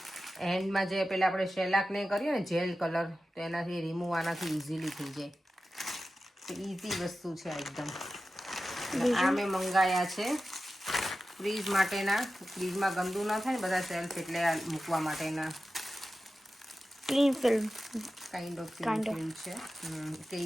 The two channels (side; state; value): both; normal; correlation 0.93